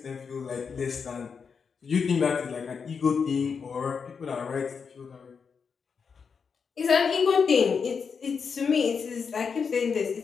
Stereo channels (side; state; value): right; quieter; 5.9 dB